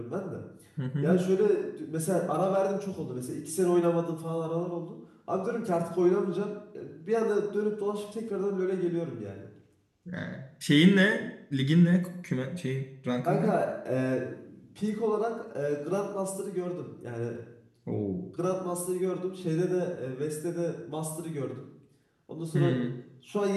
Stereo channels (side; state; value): both; identical; correlation 1.00